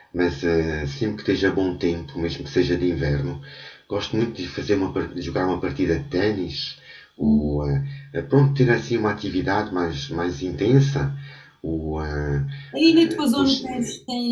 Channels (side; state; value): both; identical; correlation 1.00